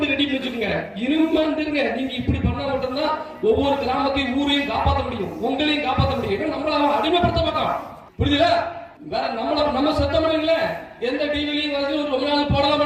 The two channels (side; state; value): both; identical; correlation 1.00